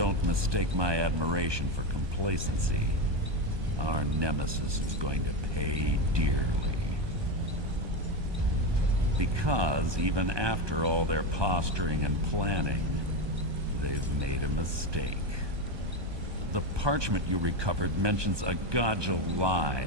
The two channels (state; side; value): late; left; 1.2 ms